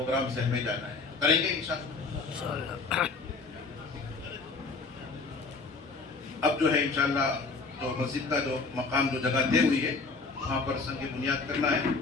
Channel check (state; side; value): quieter; right; 4.1 dB